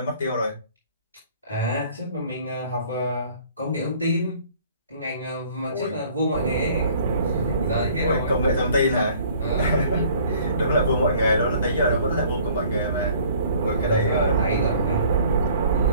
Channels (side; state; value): both; inverted; correlation -0.54